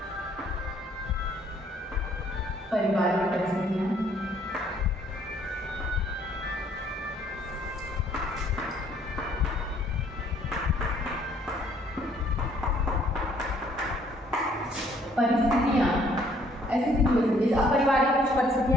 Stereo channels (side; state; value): both; normal; correlation 0.63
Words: पारिवारिक परिस्थितियां, ऐसी सिचुएशन, जैसे अब पारिवारिक कुछ